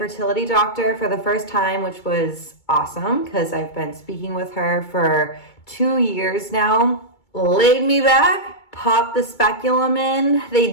doctor for the first time, which was awesome, because I've been speaking with her for 2 years now. Laid me back, popped the speculum in. They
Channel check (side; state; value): right; late; 2.3 ms